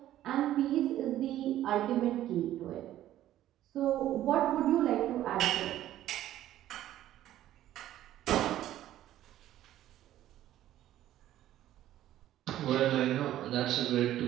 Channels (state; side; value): quieter; left; 13.0 dB